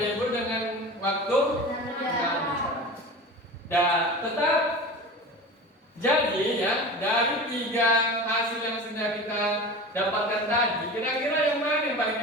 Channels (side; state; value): both; normal; correlation 0.33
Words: dengan waktu 6 jam. Dan tetap jadi ya, dari 3 hasil yang sudah kita dapatkan tadi, kira-kira yang mana yang